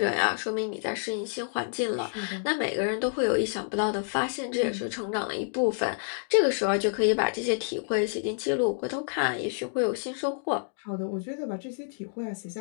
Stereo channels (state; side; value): silent; right; digital silence